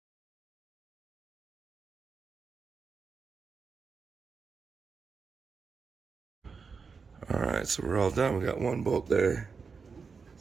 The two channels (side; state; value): left; quieter; 5.2 dB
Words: Alright, so we're all done. We got one bolt there.